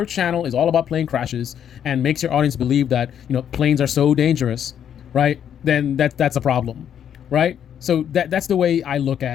channel is all about plane crashes and makes your audience believe that, planes are so dangerous, right? Then that's a problem, right? So that's the way I look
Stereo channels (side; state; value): right; quieter; 9.2 dB